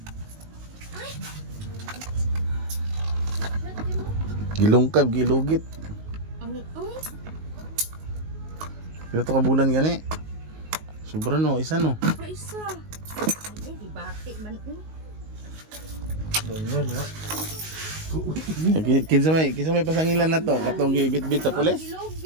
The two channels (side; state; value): left; late; 19 ms